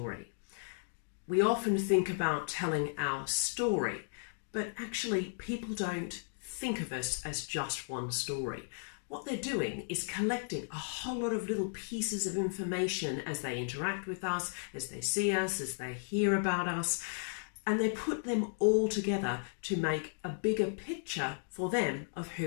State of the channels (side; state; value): right; silent; digital silence